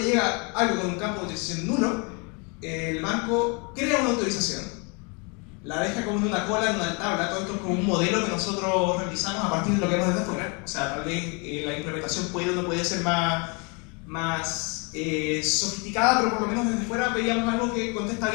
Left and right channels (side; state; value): right; quieter; 31.9 dB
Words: llega algo con un campo de autorización nulo, el banco crea una autorización, la deja como en una cola, en una tabla. Todo esto es como un modelo que nosotros realizamos a partir de lo que vemos desde afuera. O sea, tal vez la implementación puede o no puede ser más sofisticada, pero por lo menos desde fuera veíamos algo que contesta